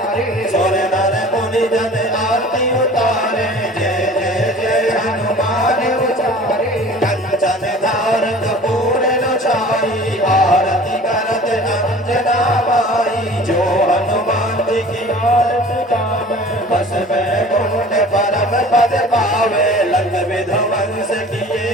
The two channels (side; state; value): both; normal; correlation 0.44